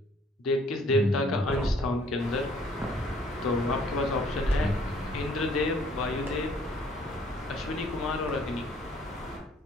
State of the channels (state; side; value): normal; both; correlation 0.60